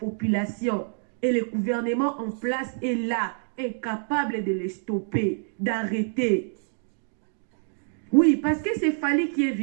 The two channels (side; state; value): left; silent; digital silence